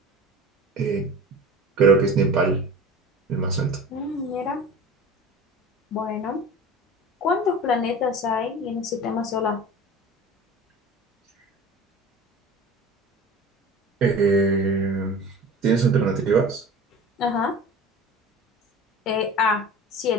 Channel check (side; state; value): both; normal; correlation 0.37